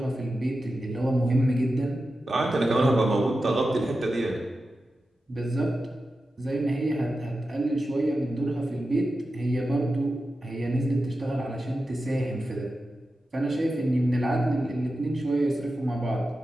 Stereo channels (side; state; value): both; normal; correlation 0.92